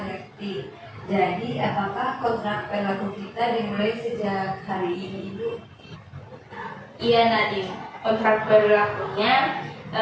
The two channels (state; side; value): identical; both; correlation 1.00